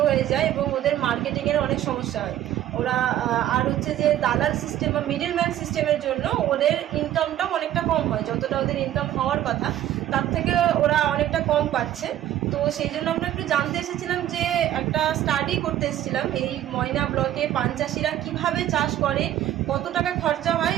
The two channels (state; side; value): quieter; left; 12.2 dB